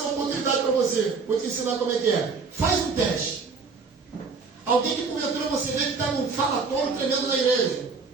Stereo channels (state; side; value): quieter; left; 4.7 dB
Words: oportunidade para você. Vou te ensinar como é que é. Faz um teste. Alguém que porventura você vê que está num falatório tremendo na igreja.